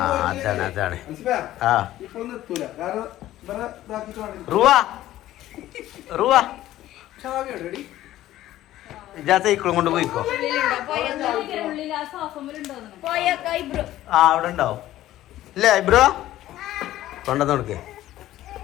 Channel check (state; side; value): quieter; right; 14.2 dB